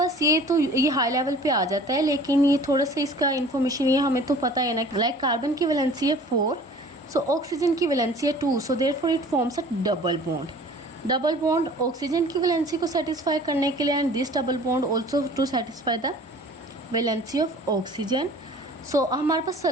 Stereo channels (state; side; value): normal; both; correlation 0.47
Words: ये हाई लेवल पे आ जाता है, लेकिन ये थोड़ा सा इसका इन्फॉर्मेशन ये हमें तो पता है ना. लाइक कार्बन की वैलेंसी है 4, सो ऑक्सीजन की वैलेंसी है 2, so therefore it forms a double bond. Double bond oxygen की वैलेंसी को सेटिस्फाई करने के लिए and this double bond also to satisfy the valency of oxygen. So हमारे पास